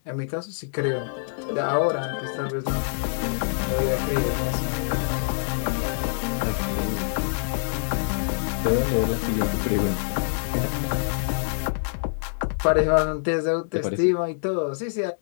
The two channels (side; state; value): right; silent; digital silence